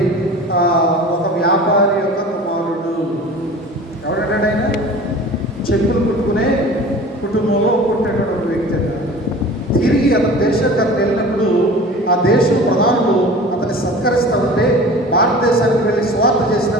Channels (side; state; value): both; normal; correlation 0.40